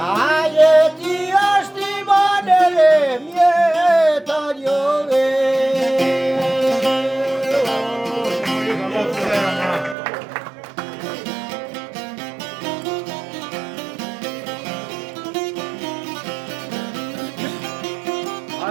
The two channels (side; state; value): left; drops out; at 10.0 s